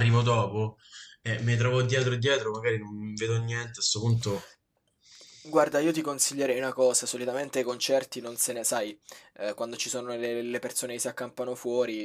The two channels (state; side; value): identical; both; correlation 1.00